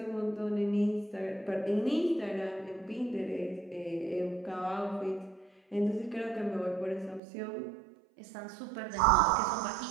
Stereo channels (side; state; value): left; drops out; at 7.2 s